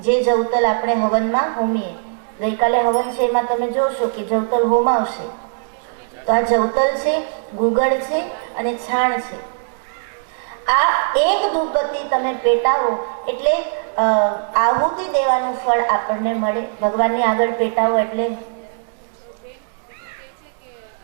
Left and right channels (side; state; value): left; silent; digital silence